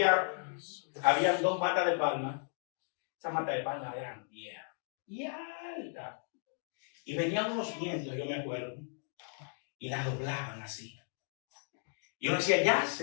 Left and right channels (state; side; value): silent; right; 54 dB below the other